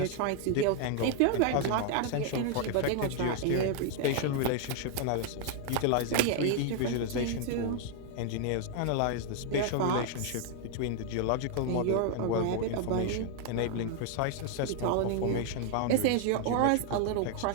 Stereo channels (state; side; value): different; both; correlation 0.00